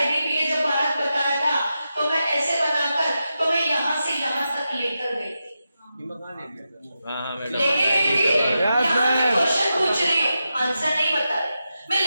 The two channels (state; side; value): inverted; both; correlation -0.89